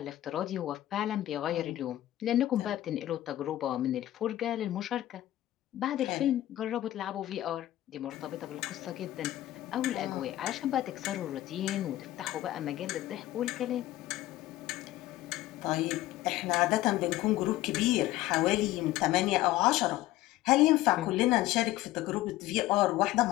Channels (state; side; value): quieter; right; 15.2 dB